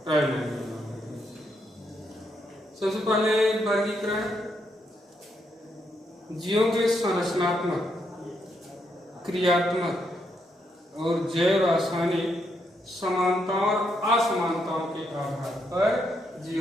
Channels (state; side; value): normal; both; correlation 0.78